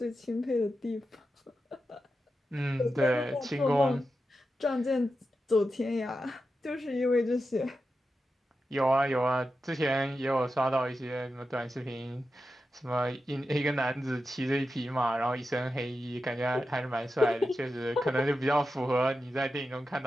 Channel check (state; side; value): normal; both; correlation 0.90